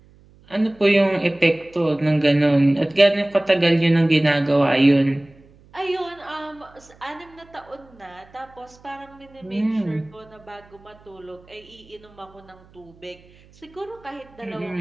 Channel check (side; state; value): right; noise; hum, 27 dB below the sound